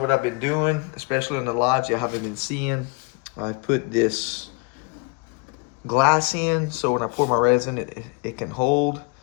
I've been doing, especially in the lives you haven't been seeing, I put this glass in so when I pour my resin it can hold.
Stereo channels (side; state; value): right; quieter; 30.4 dB